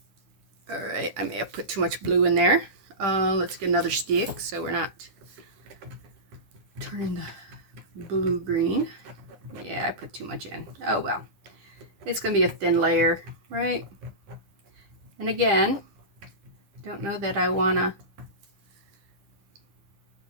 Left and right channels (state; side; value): late; left; 9.7 ms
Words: I may have put too much blue in there. Let's get another stick so we're not turning the blue green. Yeah, I put too much in. Oh well. It's going to be a thin layer, right? And again, don't know that I want to